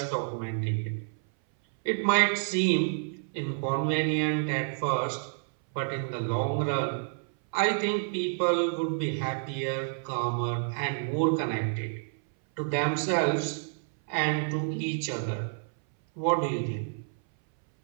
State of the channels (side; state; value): left; silent; 59 dB below the other